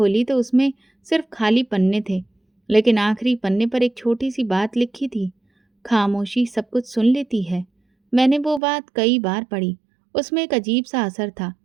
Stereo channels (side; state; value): left; drops out; at 8.6 s